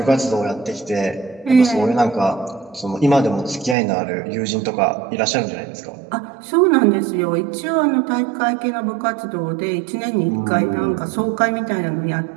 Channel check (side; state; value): left; drops out; at 3.8 s